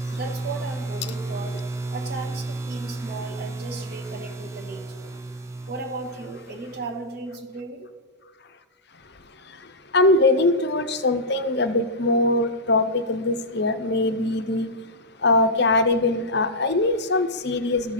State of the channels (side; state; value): both; normal; correlation -0.06